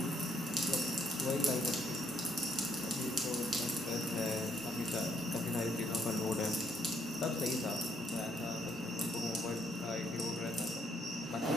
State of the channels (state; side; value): normal; both; correlation 0.70